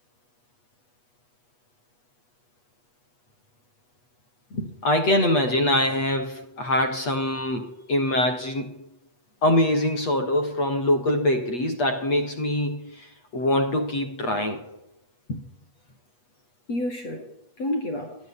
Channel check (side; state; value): right; late; 8.3 ms